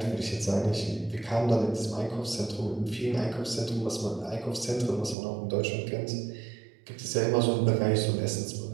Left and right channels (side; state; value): left; drops out; at 5.2 s